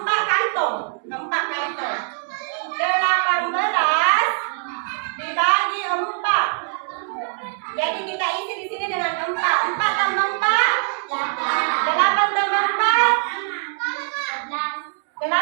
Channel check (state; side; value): silent; left; 64 dB below the other